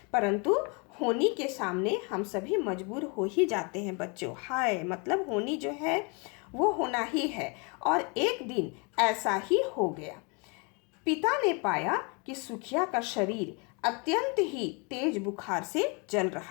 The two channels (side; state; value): right; quieter; 32.6 dB